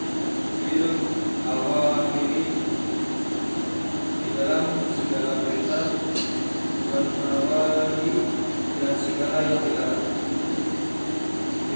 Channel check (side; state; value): both; inverted; correlation -1.00